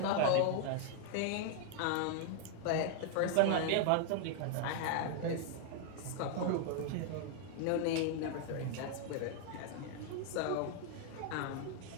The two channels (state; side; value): different; both; correlation 0.00